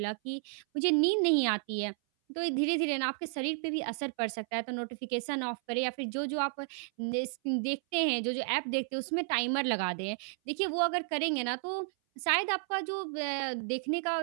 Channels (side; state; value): left; silent; 56 dB below the other